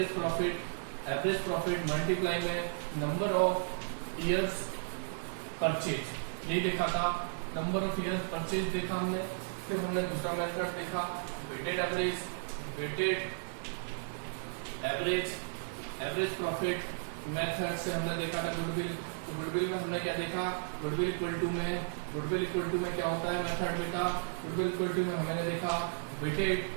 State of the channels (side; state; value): left; silent; digital silence